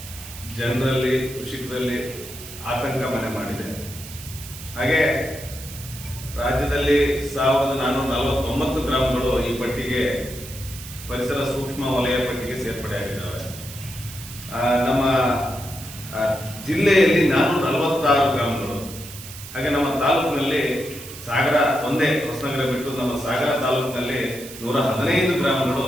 ಜನರಲ್ಲಿ, ಕೃಷಿಕರಲ್ಲಿ ಆತಂಕ ಮನೆ ಮಾಡಿದೆ. ಹಾಗೆ ರಾಜ್ಯದಲ್ಲಿ 1449 ಗ್ರಾಮಗಳು ಈ ಪಟ್ಟಿಗೆ, ಪರಿಸರ ಸೂಕ್ಷ್ಮ ವಲಯ ಪಟ್ಟಿಗೆ ಸೇರ್ಪಡೆಯಾಗಿದ್ದಾವೆ. ನಮ್ಮ ಜಿಲ್ಲೆಯಲ್ಲಿ 446 ಗ್ರಾಮಗಳು. ಹಾಗೆ ನಮ್ಮ ತಾಲೂಕಿನಲ್ಲಿ ಸಾಗರ ಒಂದೇ, ಹೊಸನಗರ ಬಿಟ್ಟು ನಮ್ಮ ಸಾಗರ ತಾಲೂಕಿನಲ್ಲಿ 115 ಗ್ರಾಮಗಳು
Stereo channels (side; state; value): right; noise; hiss, 13 dB below the sound